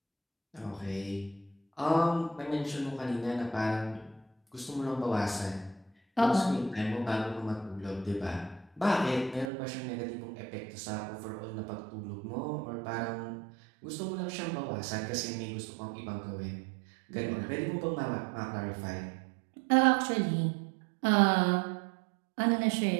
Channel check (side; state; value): left; drops out; at 9.5 s